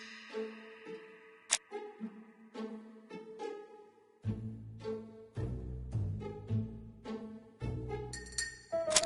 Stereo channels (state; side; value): identical; both; correlation 1.00